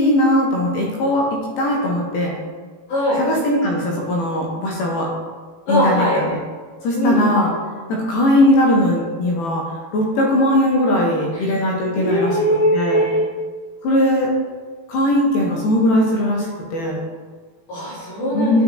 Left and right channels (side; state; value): right; late; 18 ms